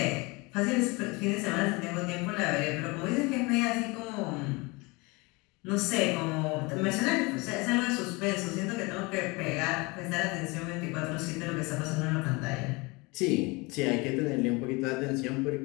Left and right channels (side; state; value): right; quieter; 26.1 dB